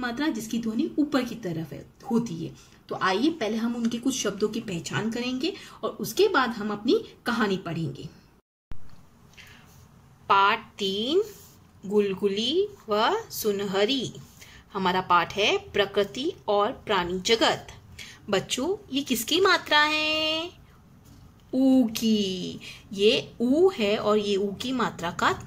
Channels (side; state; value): both; identical; correlation 1.00